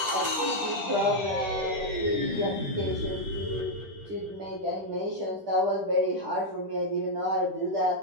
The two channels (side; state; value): left; late; 9.6 ms